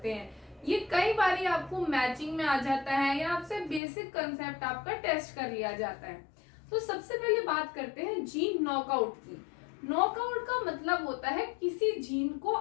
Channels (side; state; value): right; drops out; at 3.8 s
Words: हैं। ये कई बारी आपको मैचिंग में आ जाता है या आपसे बेसिक कंसेप्ट आपका टेस्ट कर लिया जाता है। तो सबसे पहले बात करते हैं जीन नॉकआउट की। नॉकआउट का मतलब होता है किसी जीन को